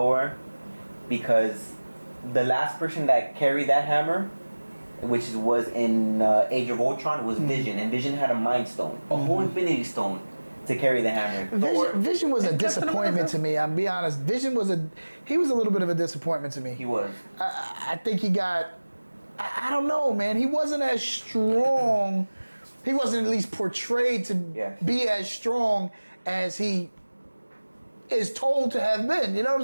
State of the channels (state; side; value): inverted; both; correlation -1.00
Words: because the last person that carried that hammer, which was in Age of Ultron, was Vision, and Vision had a Mind Stone, a whole Infinity Stone to carry the hammer. Vision was a disappointment to me. I'll be honest. Vision was he was a little bit of a disappointment to me. He was. I think he got, I don't know, man. He wasn't as strong. He wasn't at least portrayed to be as strong as he is told to have been. You know what I'm